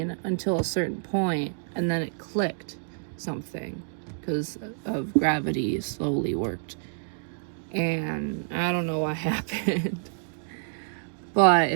until a certain point, and then it clicked something because of gravity slowly worked. And I don't know what happened. But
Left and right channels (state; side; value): silent; left; digital silence